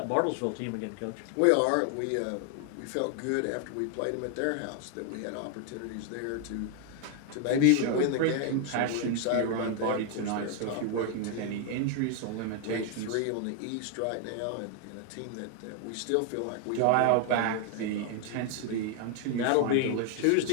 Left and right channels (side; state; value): both; different; correlation 0.00